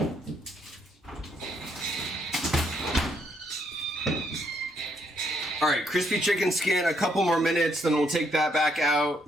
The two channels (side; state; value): both; normal; correlation 0.73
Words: All right, crispy chicken skin, a couple more minutes, then we'll take that back